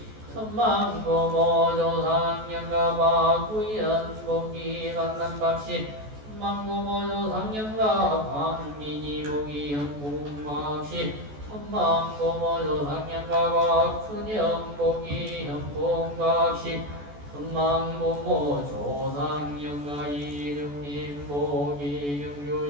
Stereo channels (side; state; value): left; late; 14 ms